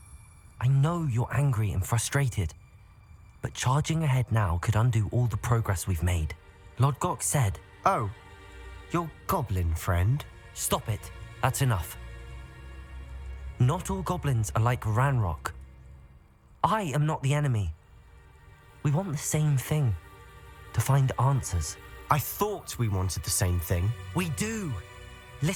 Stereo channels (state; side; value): identical; both; correlation 1.00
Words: I know you're angry and frustrated, but charging ahead now could undo all the progress we've made. Lord Gok said... Oh, your goblin friend? Stop it. That's enough. Not all goblins are like Ranrock. I am not the enemy. We want the same thing. To find answers. I thought we wanted the same thing. We do.